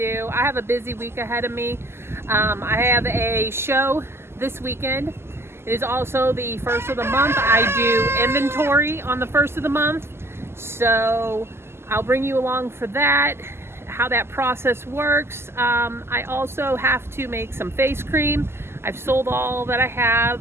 I have a busy week ahead of me. I have a show this weekend. It is also the first of the month. I do inventory on the first of the month, so I'll bring you along for that, how that process works. I also have to make some face cream. I've sold all that I have.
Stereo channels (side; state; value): left; late; 0.12 ms